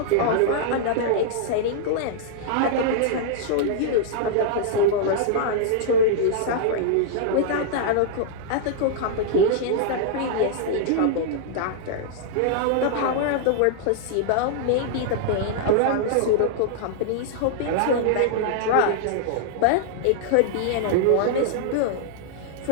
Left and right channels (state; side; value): different; both; correlation -0.01